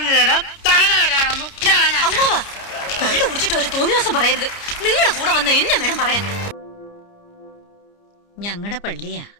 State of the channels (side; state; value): right; late; 29 ms